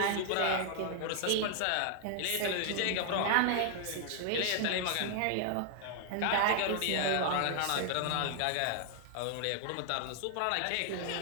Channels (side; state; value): both; different; correlation 0.00